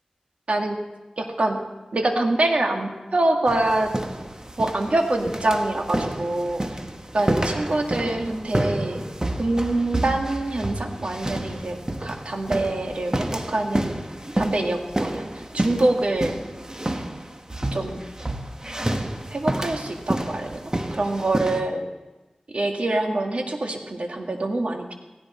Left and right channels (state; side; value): normal; both; correlation 0.93